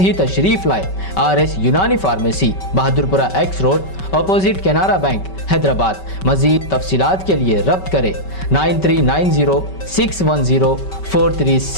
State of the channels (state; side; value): late; right; 5.2 ms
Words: तशरीफ लाए RS Unani pharmacy, Bahadurpura X road, opposite Canara bank, Hyderabad. मजीद तफसीलात के लिए रब्त करें